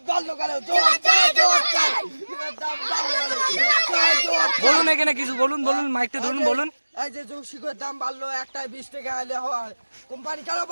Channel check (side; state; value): both; inverted; correlation -1.00